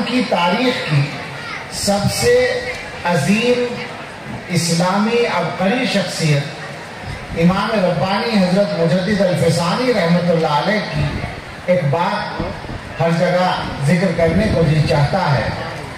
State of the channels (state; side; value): identical; both; correlation 1.00